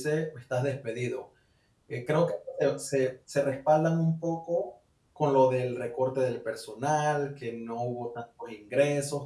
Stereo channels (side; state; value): both; identical; correlation 1.00